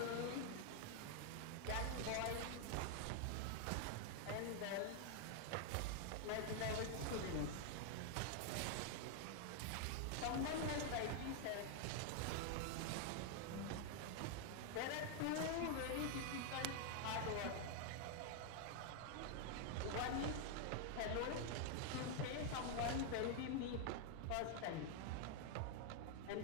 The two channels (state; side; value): different; both; correlation 0.00